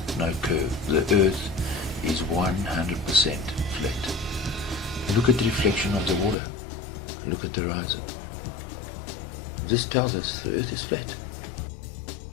no curve. The earth is 100% flat. Look at the reflection of the water. Look at the horizon. This tells us the earth is flat.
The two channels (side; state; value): right; drops out; at 6.4 s